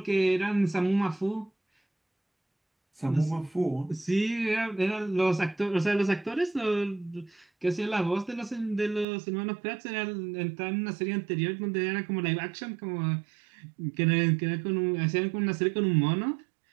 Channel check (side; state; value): left; drops out; at 9.1 s